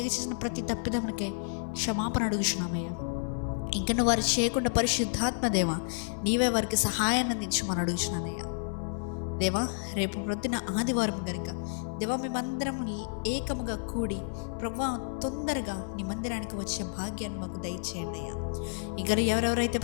చేసిన ప్రతి తప్పిదములకే క్షమాపణ అడుగుచున్నామయ్యా. ఇంకా వారు చేయకుండా పరిశుద్ధాత్మ దేవా, నీవే వారికి సహాయాన్ని అందించమని అడుగుచున్నానయ్యా. దేవా, రేపు ప్రొద్దున ఆదివారం కనుక దేవా, మేమందరం ఏకముగా కూడి ప్రభా తొందరగా నీ మందిరానికి వచ్చే భాగ్యాన్ని మాకు దయచేయండి అయ్యా. ఇంకా ఎవరెవరైతే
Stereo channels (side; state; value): right; silent; 58 dB below the other